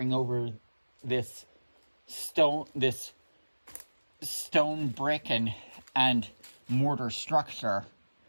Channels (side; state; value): both; inverted; correlation -1.00